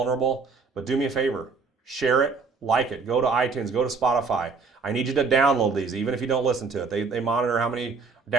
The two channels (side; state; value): left; quieter; 4.7 dB